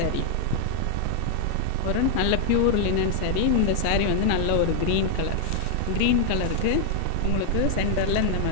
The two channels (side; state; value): both; different; correlation -0.01